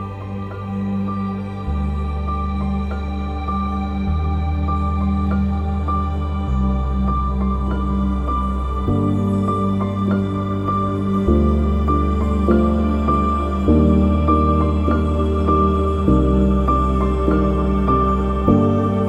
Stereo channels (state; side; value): identical; both; correlation 1.00